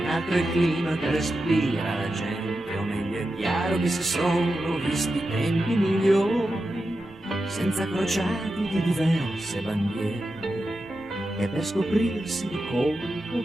altro il clima che respira la gente, o meglio è chiaro che si sono visti tempi migliori, senza crociati di diverse bandiere, e per scoprirsi di colpo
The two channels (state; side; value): normal; both; correlation 0.90